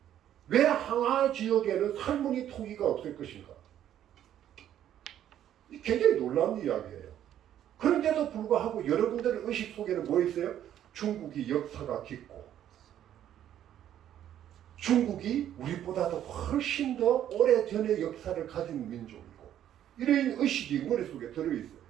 왜 항하 지역에는 살무늬 토기가 없을 것인가? 굉장히 놀라운 이야기예요. 그런데도 불구하고 여러분들의 의식 속에는 뭐 있어요? 중국이 역사가 깊고 중국이 우리보다도 훨씬 더 오래전의 역사를 가진 민족이고 이런 의식이 머릿속에 들어있어요.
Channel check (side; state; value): left; quieter; 11.0 dB